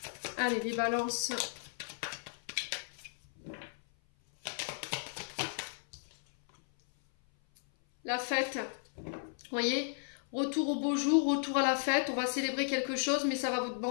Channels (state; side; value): silent; right; 55 dB below the other